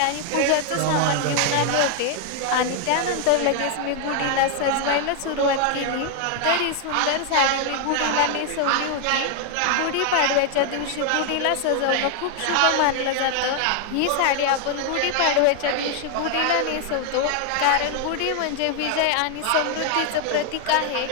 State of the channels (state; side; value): different; both; correlation 0.00